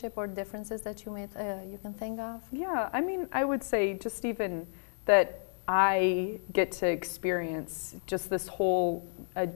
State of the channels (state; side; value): silent; right; digital silence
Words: or differences that you can think of? Yeah, I would say just even that I get to experience just this whole